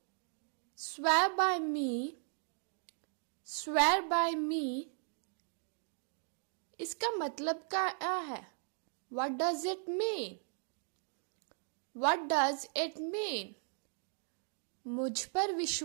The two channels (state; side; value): silent; left; 53 dB below the other